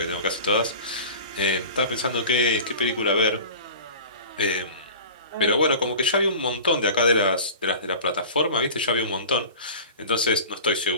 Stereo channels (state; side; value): inverted; both; correlation -0.37